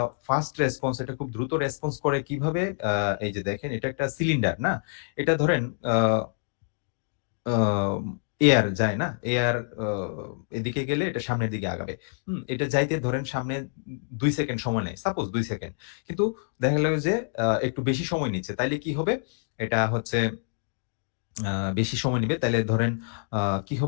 ফাস্ট রেসপন্স এটা খুব দ্রুত রেসপন্স করে কিভাবে? এই যে দেখেন এটা একটা সিলিন্ডার, না? এটা ধরেন আ আম এয়ার যায় না? এয়ার আ এদিকে গেলে এটা সামনের দিকে আগাবে। এটা যাইতে ধরেন সামনে ২ সেকেন্ড সময় নেয়। Suppose ২ second. কিন্তু দেখা গেল যে একটু বেশি সময় নিচ্ছে। তাইলে কি হবে? এটা হচ্ছে আ বেশি সময় নিবে। তাইলে ধরেন আ কি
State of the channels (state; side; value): silent; right; digital silence